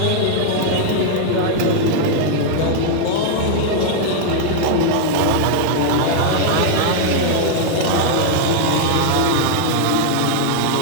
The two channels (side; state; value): both; different; correlation -0.01